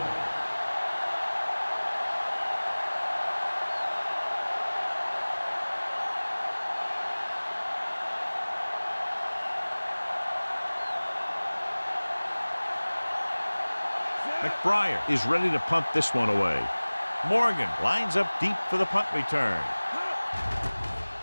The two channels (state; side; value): inverted; both; correlation -1.00